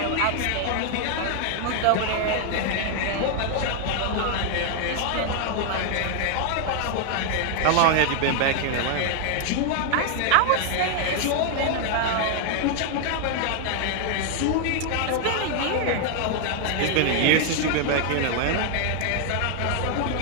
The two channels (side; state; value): both; different; correlation 0.00